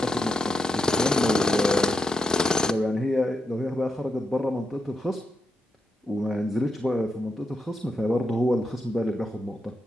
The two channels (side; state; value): both; normal; correlation 0.86